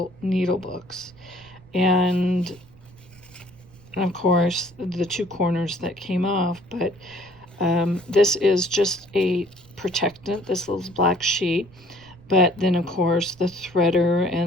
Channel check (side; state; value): right; noise; rumble, 25 dB below the sound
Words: needle books, and of course the 2 corners that came off, but this is just a protectant, this little black sheet. But then of course the threader